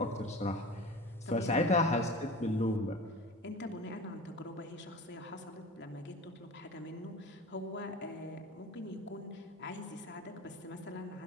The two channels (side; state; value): both; normal; correlation 0.35